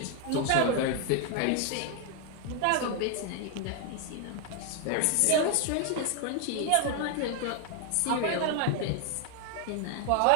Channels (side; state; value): both; different; correlation 0.00